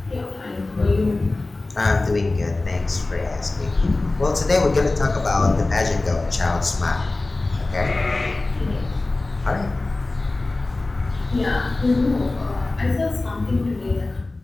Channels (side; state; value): right; quieter; 3.1 dB